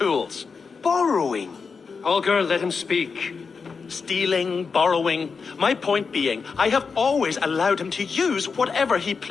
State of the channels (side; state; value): right; quieter; 5.2 dB